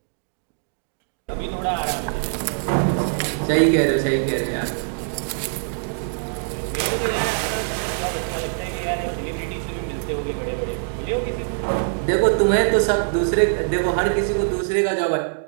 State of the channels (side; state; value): left; silent; digital silence